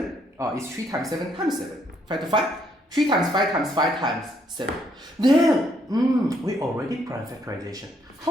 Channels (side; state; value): both; normal; correlation 0.71